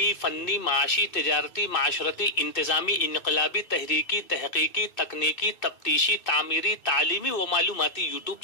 फन्नी, माशी, तिजारती, माशरती, इंतजामी, इनकलाबी, तहरीकी, तहकीकी, तकनीकी, तफ्तीशी, तामीरी, तालीमी व मालूमाती यूट्यूब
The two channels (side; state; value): right; late; 2.6 ms